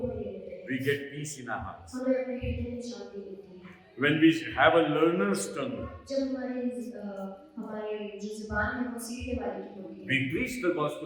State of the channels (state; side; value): identical; both; correlation 1.00